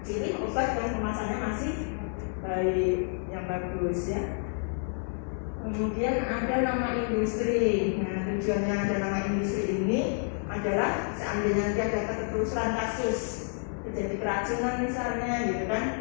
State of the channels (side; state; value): right; silent; 58 dB below the other